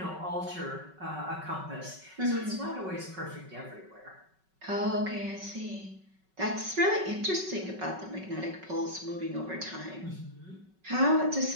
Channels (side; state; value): left; late; 5.3 ms